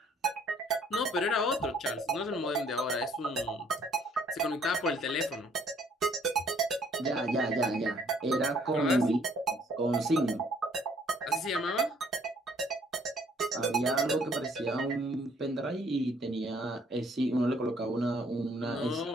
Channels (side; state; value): both; normal; correlation 0.62